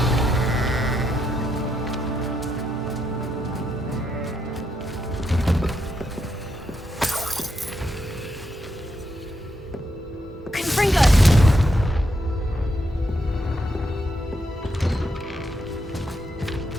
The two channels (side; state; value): both; normal; correlation 0.80